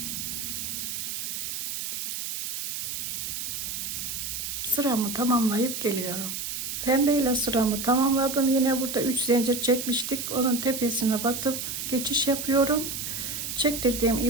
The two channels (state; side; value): noise; right; hiss, 4 dB below the sound